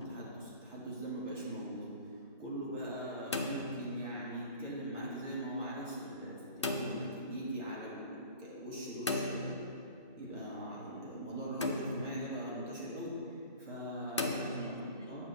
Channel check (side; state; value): both; inverted; correlation -0.41